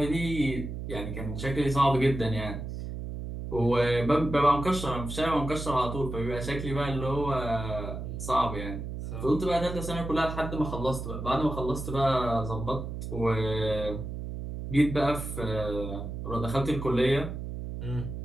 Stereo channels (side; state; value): right; noise; hum, 6 dB below the sound